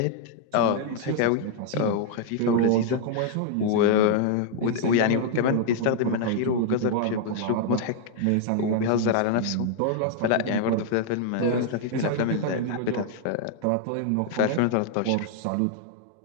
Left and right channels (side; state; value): both; different; correlation 0.00